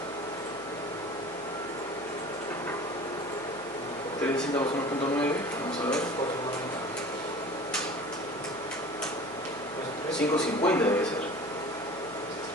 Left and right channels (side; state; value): right; noise; hum, 25 dB below the sound